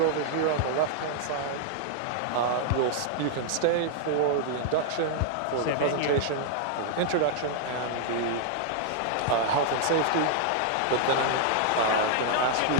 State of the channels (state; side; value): different; both; correlation -0.01